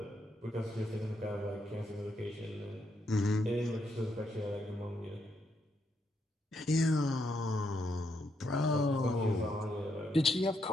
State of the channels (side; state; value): both; normal; correlation 0.78